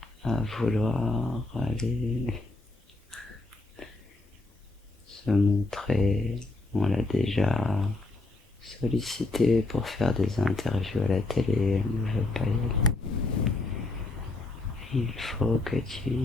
à vouloir aller se montrer. On l'a déjà sollicité pour faire des interviews à la télé. Elle ne veut pas y aller. Il faut que tu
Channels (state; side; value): quieter; right; 3.1 dB